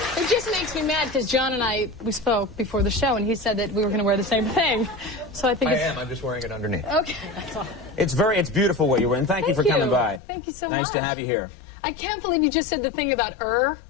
nice. It just makes me mad because John and we spoke before the show, and he said that we were going to wear the same thing. So I think I'm just wearing it underneath. Okay. That's all. It's beautiful what you're wearing. Thank you for coming by. Thank you so much. Nice to have you here. I can't believe you just said the thing about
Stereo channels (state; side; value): drops out; right; at 10.2 s